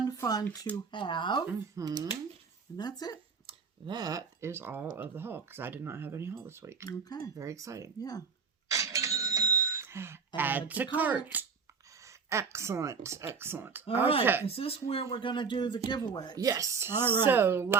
to have. Mm-hmm. And that's it. That is all of the haul, because I did not have any haul this week. Okay. Very exciting. Yeah. Add to cart. Excellent. All right. Is this where we're going to do the giveaway? Yes. All right. So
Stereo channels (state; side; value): quieter; left; 5.5 dB